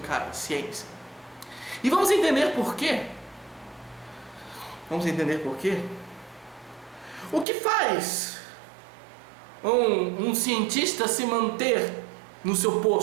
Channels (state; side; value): drops out; left; at 7.5 s